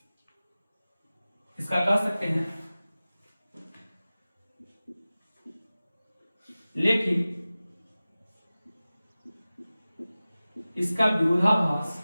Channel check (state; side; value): inverted; both; correlation -0.97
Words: इसका कह सकते हैं, लेकिन इसका विरोधाभास